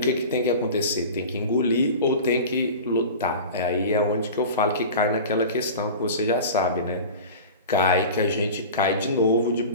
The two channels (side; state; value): both; inverted; correlation -0.35